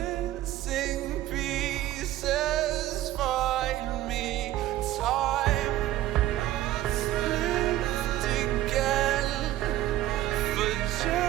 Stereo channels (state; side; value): quieter; left; 14.5 dB